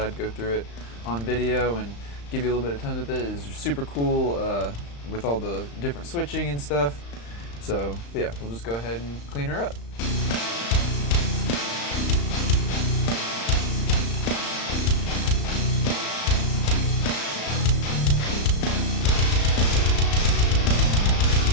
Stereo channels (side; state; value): right; late; 35 ms